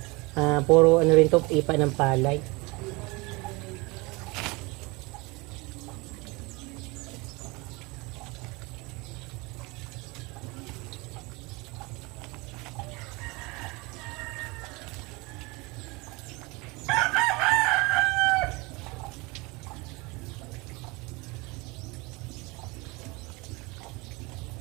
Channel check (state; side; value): quieter; left; 25.3 dB